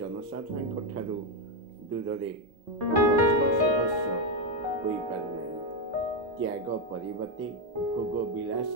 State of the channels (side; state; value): both; normal; correlation 0.07